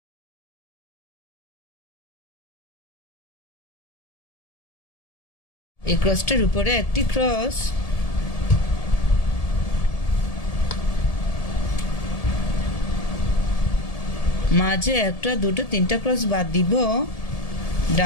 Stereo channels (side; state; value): right; late; 1.7 ms